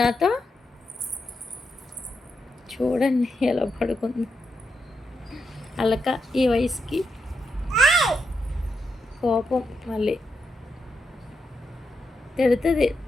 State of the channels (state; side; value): normal; both; correlation 0.84